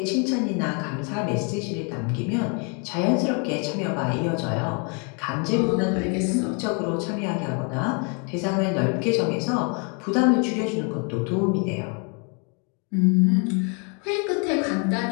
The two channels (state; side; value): quieter; right; 36.5 dB